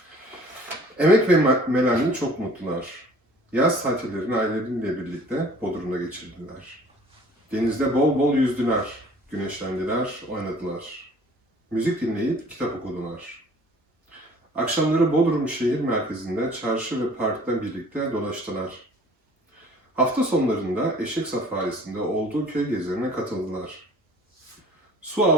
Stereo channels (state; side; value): normal; both; correlation 0.51